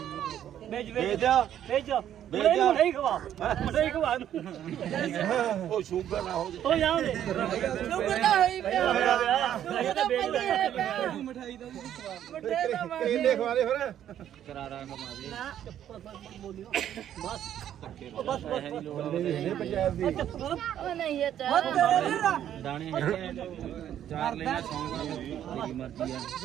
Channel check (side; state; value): left; quieter; 10.7 dB